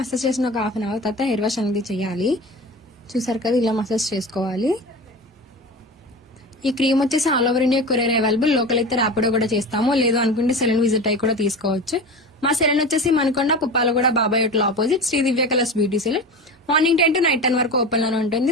చేసిన ఒక 1/2 hour తర్వాత హెయిర్ వాష్ అనేది చేయాలి. చూసారు కదా, ఇలా మసాజ్ చేసుకోవాలి. ఈ క్రీమ్ వచ్చేసి all over India courier available. Local అయితే ర్యాపిడో కూడా చేస్తాము, లేదు అనుకుంటే సెలూన్ విజిట్ అయ్యి కూడా తీసుకోవచ్చు. మా సెలూన్ వచ్చేసి Manikonda Puppalaguda Babai hotel opposite Sri Divya colours beauty salon. Morning 10 to night 10 వరకు ఓపెన్ లోనే ఉంటుంది.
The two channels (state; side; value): normal; both; correlation 0.30